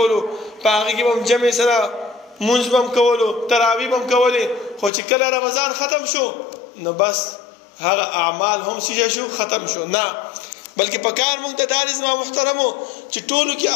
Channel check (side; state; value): right; drops out; at 4.9 s